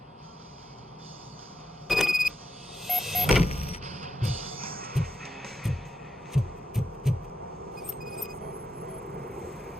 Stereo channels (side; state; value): both; normal; correlation 0.83